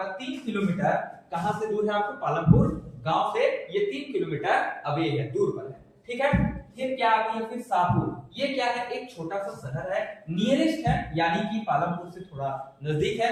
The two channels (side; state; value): both; identical; correlation 1.00